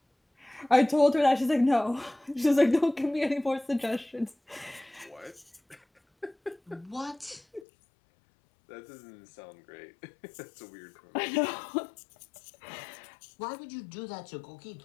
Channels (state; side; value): drops out; right; at 7.7 s